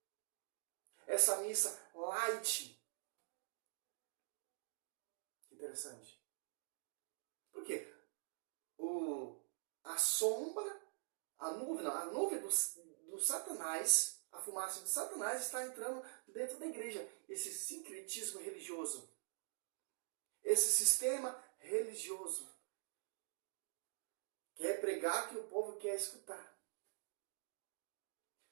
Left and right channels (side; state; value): left; silent; digital silence